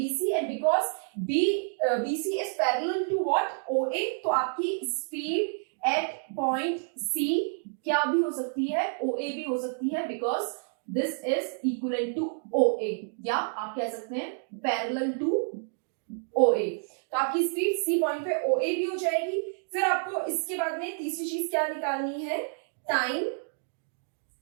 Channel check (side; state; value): left; silent; digital silence